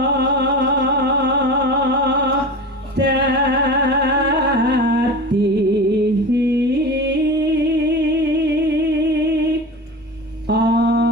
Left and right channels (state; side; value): normal; both; correlation 0.30